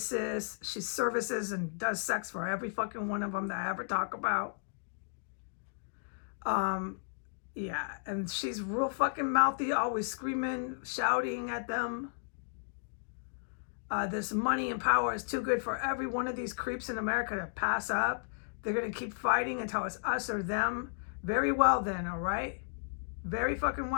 She services and does sex for every fucking one of them that I ever talk about. Yeah, and she's real fucking mouthy, always screaming, shouting at them. This money and power is too good for every one of these creeps in America to pass up. They're going to keep fighting until it's us or them. Very well then, all right? Very fucking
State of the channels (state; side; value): silent; right; digital silence